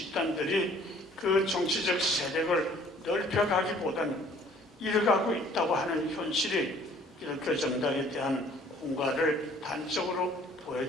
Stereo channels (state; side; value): normal; both; correlation 0.56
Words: 그 정치적 세력을 넓혀가기보다는 잃어가고 있다고 하는 현실이 기독교 정당에 대한 공과를 단적으로